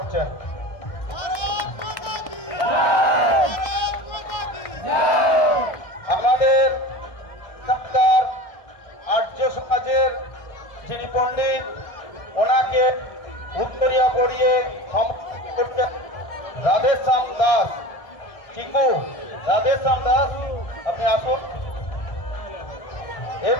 আমাদের এখানকার আর্য সমাজের যিনি পণ্ডিত, ওনাকে উত্তরিয়া পড়িয়ে সম্বর্ধনা করছেন রাধেশ্যাম দাস। রাধেশ্যাম দাস আপনি আসুন।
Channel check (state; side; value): late; right; 1.3 ms